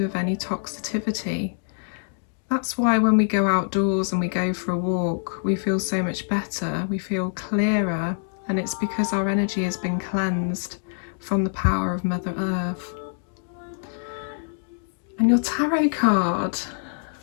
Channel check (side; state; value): right; silent; digital silence